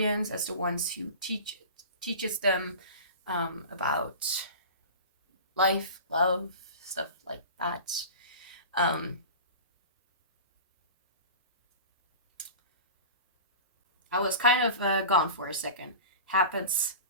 as the ones who teaches them about life, love, stuff like that. I was kind of gone for a second. Happens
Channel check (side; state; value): both; inverted; correlation -0.35